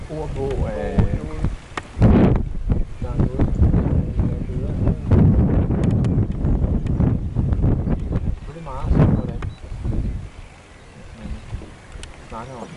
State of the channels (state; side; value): identical; both; correlation 1.00